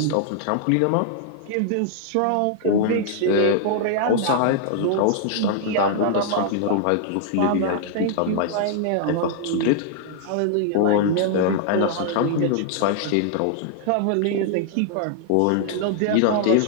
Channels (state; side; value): different; both; correlation 0.00